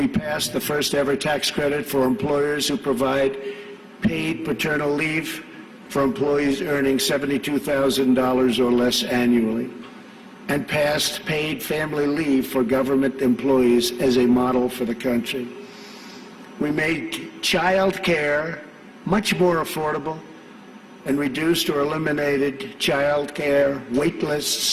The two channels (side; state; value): both; identical; correlation 1.00